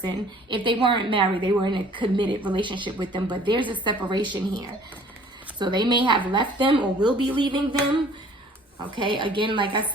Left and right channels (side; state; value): both; normal; correlation 0.53